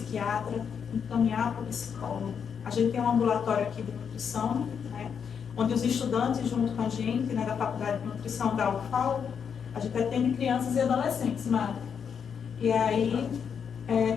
encaminhar para o psicólogo. A gente tem um ambulatório aqui de nutrição, né? Onde os estudantes, junto com a gente, né, da Faculdade de Nutrição da UFAL, a gente atende crianças e adolescentes, Mari. E aí,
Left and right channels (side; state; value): right; quieter; 7.1 dB